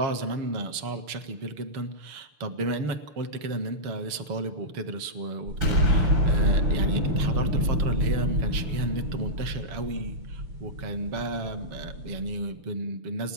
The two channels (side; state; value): left; late; 6.6 ms